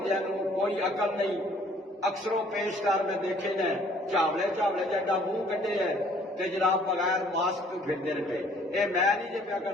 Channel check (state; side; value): normal; both; correlation 0.58